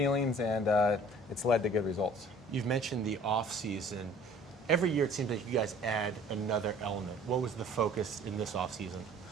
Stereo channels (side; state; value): both; normal; correlation 0.51